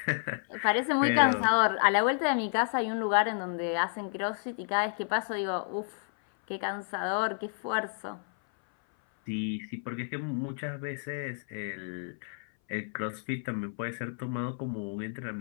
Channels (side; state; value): right; silent; 57 dB below the other